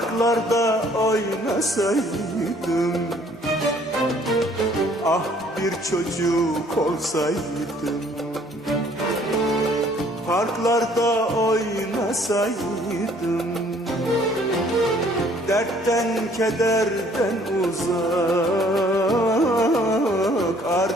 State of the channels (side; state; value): both; normal; correlation 0.59